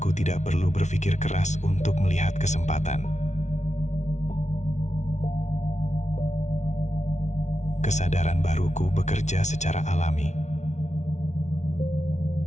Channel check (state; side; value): late; right; 0.33 ms